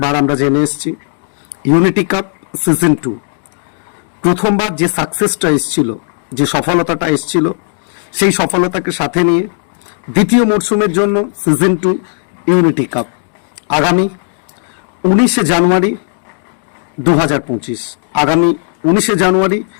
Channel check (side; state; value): right; silent; 61 dB below the other